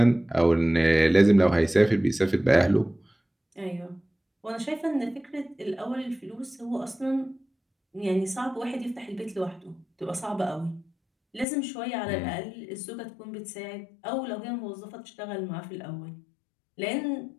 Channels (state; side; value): drops out; right; at 11.5 s